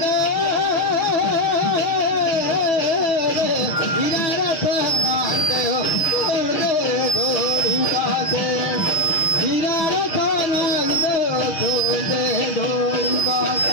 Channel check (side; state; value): right; late; 6.4 ms